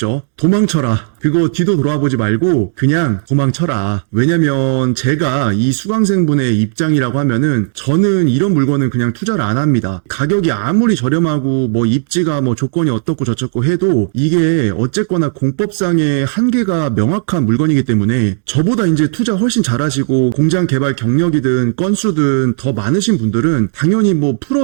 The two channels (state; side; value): silent; left; 62 dB below the other